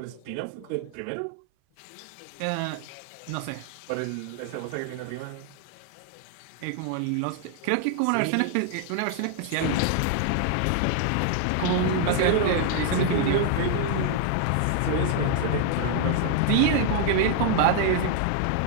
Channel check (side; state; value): both; different; correlation 0.00